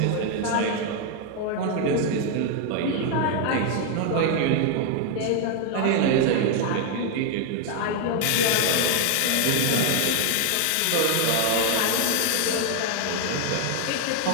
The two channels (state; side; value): different; both; correlation 0.00